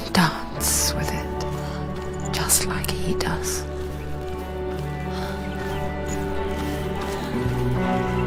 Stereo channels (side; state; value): both; identical; correlation 1.00